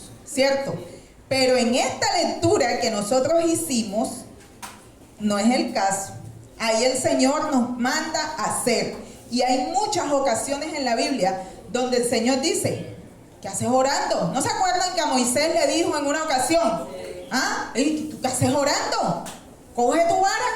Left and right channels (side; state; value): both; identical; correlation 1.00